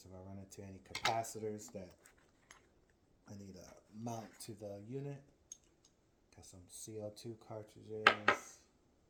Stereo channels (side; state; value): both; identical; correlation 1.00